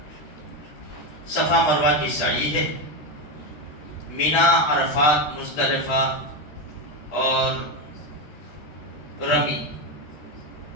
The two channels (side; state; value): right; late; 13 ms